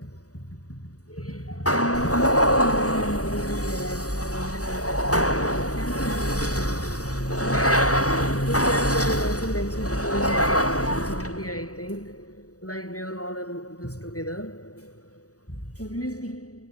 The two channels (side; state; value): right; late; 0.66 ms